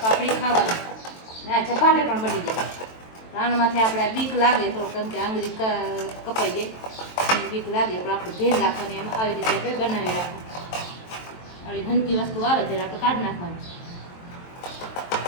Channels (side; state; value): right; late; 23 ms